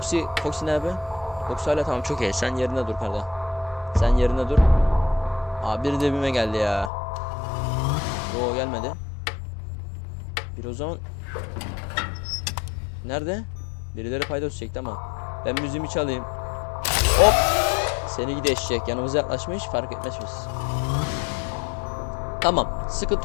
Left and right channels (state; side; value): drops out; right; at 6.9 s